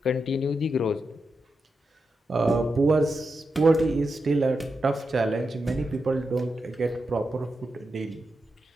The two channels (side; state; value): both; normal; correlation 0.87